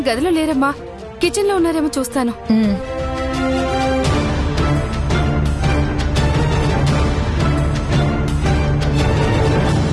గదిలో లేరమ్మా, కిచెన్ లో ఉన్నారేమో చూస్తాను.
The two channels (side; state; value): both; identical; correlation 1.00